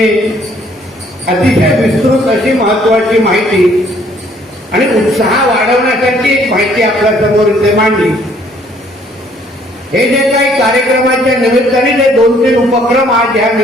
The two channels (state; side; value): normal; both; correlation 0.62